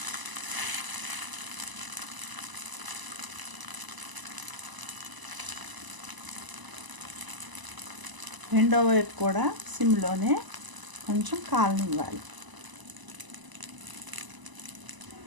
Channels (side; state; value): left; late; 1.0 ms